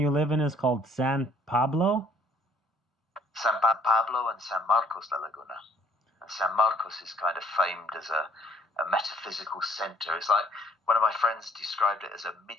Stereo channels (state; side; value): normal; both; correlation 0.61